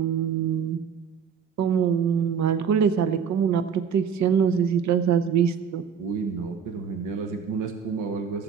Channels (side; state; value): left; quieter; 7.2 dB